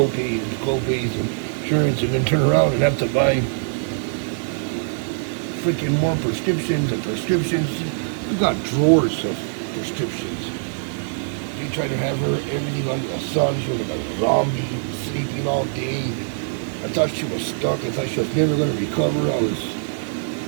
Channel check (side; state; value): left; silent; digital silence